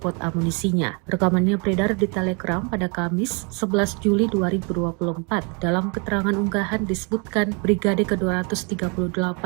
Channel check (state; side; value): quieter; left; 33.8 dB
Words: amunisinya. Rekamannya beredar di Telegram pada Kamis 11 Juli 2024. Dalam keterangan unggahan disebutkan Brigade